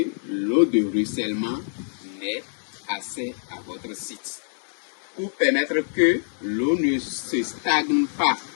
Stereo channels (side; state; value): right; silent; digital silence